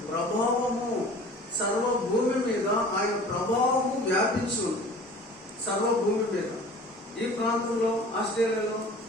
ప్రభావము, సర్వభూమి మీద ఆయన ప్రభావము వ్యాపించి ఉంది. సర్వభూమి మీద. ఈ ప్రాంతంలో, ఆస్ట్రేలియాలో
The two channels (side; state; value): both; normal; correlation 0.44